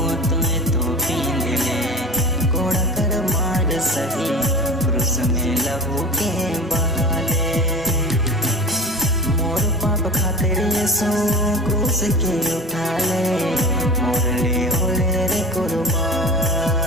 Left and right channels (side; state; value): both; normal; correlation 0.33